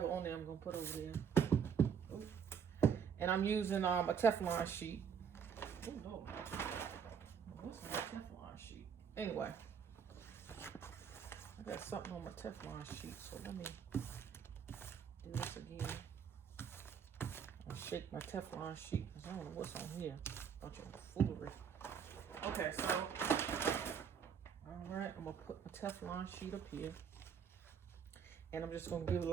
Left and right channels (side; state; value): left; quieter; 7.4 dB